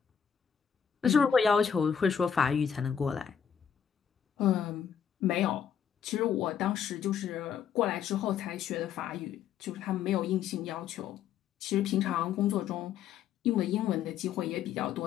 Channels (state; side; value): quieter; right; 8.0 dB